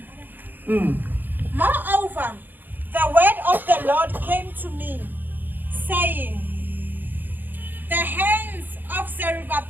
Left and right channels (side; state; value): left; late; 0.089 ms